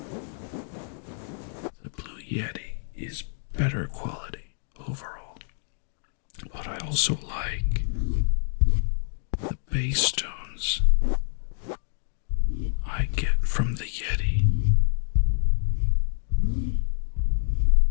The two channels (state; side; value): silent; right; digital silence